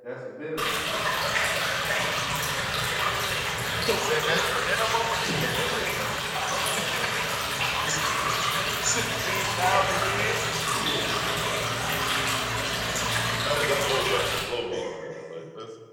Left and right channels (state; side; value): identical; both; correlation 1.00